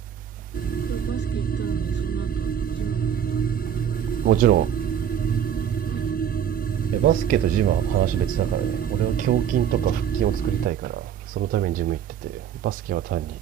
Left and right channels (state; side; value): quieter; left; 9.0 dB